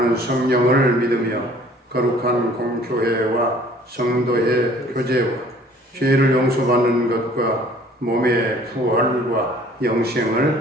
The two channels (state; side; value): normal; both; correlation 0.54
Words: 성령을 믿으며 거룩한 공교회와 성도의 교제와 죄를 용서받는 것과 몸의 부활과